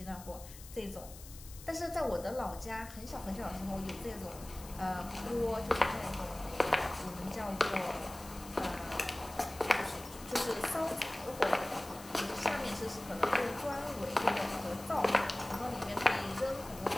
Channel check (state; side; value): noise; left; hiss, 16 dB below the sound